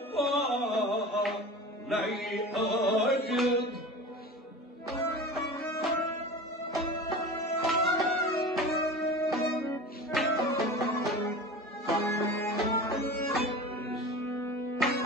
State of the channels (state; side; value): normal; both; correlation 0.34